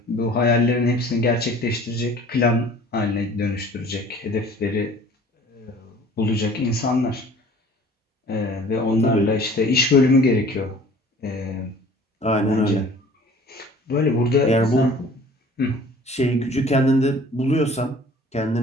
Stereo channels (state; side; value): normal; both; correlation 0.49